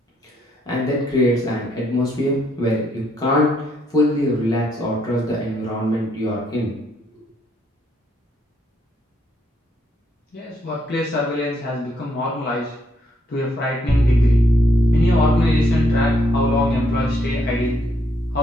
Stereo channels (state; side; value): normal; both; correlation 0.73